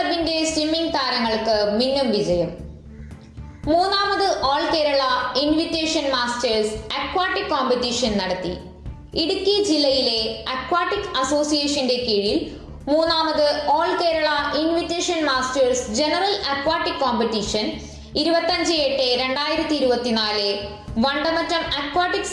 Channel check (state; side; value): identical; both; correlation 1.00